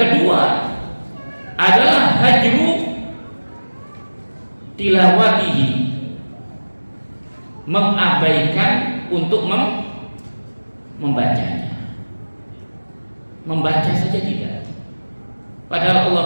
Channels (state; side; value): inverted; both; correlation -1.00